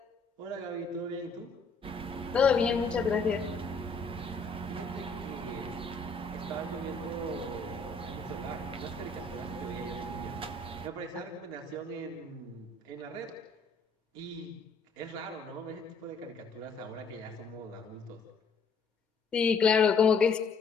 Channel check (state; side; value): quieter; right; 4.0 dB